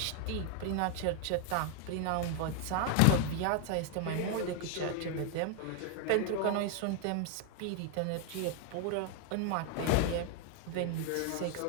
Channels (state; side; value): different; both; correlation 0.00